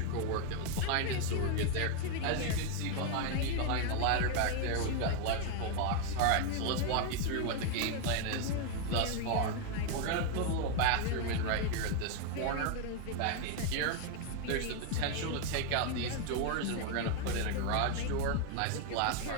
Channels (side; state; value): both; different; correlation 0.01